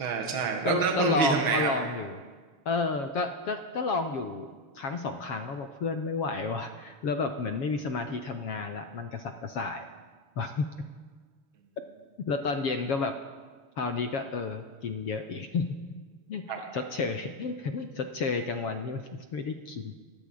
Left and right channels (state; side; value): late; right; 6.2 ms